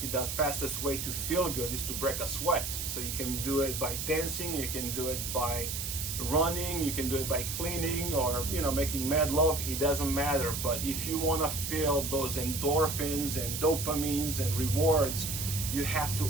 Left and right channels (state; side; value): noise; right; hiss, 4 dB below the sound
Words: the fastest way to feel good is to break a sweat. So you can do it by dancing, you can do it by running, you can do it by cleaning, or making mad love. It doesn't matter. But if you want to feel those endorphins and dopamines and rewards, you have